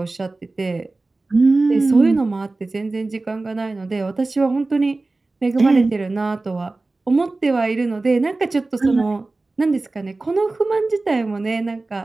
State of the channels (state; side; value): quieter; left; 3.3 dB